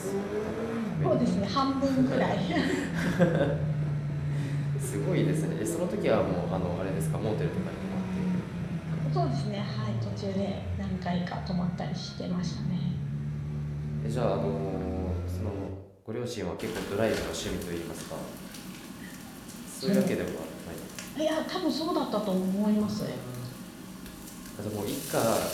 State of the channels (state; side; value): identical; both; correlation 1.00